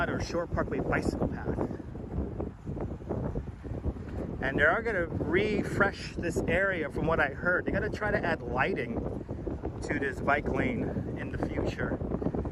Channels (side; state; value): both; identical; correlation 1.00